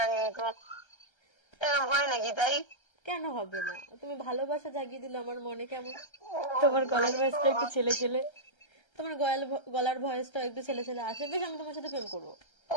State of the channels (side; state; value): right; late; 1.3 ms